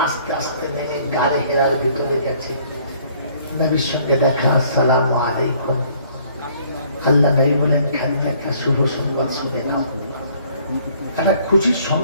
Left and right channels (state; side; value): inverted; both; correlation -0.59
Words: আস্তে আস্তে নেমে গাড়ি হেরার ভিতরে গেছে। নবীর সঙ্গে দেখা, আসসালামু আলাইকুম। আল্লাহ নবী বলেন, খাদিজা একটা শুভ সংবাদ শুনে নাও, একটা খুশির